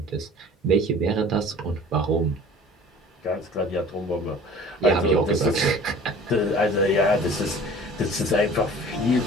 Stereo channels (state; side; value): normal; both; correlation 0.45